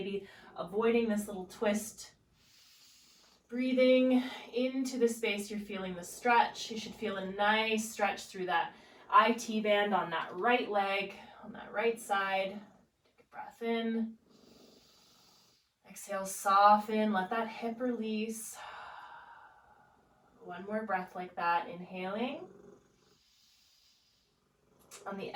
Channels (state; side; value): identical; both; correlation 1.00